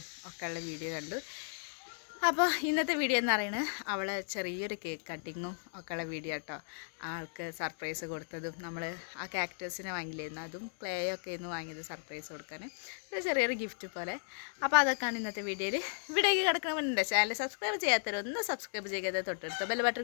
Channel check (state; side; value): silent; right; digital silence